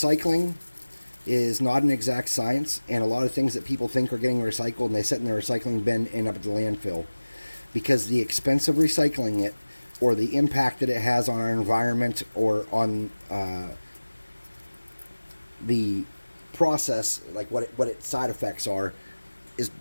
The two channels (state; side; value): inverted; both; correlation -1.00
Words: is not an exact science, and a lot of things that people think are getting recycled and they sit in their recycling bin end up at the landfill, because the expense of recycling it, or the impact that it has on our environment, or on the process, like what its side effects are, is